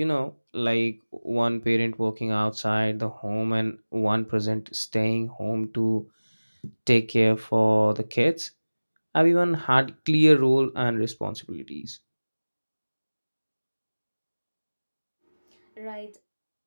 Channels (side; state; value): both; inverted; correlation -1.00